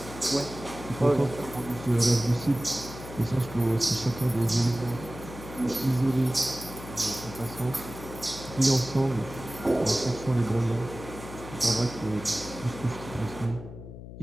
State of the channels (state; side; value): noise; left; hum, 13 dB below the sound